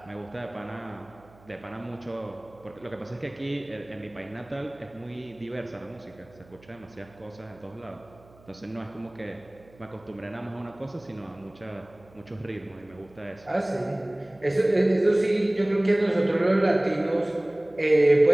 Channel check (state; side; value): noise; right; hum, 26 dB below the sound